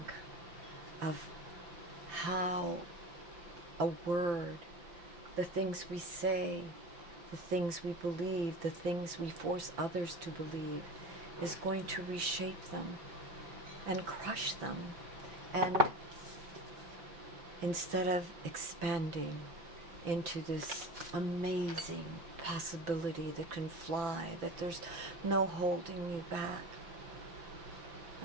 of how a word, the things we say, the things we believe, the things we force others to believe, is going to reshape them and crush them. And instead of expanding into this amazing possibility that can fly, that there's no holding you back.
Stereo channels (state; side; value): late; left; 5.9 ms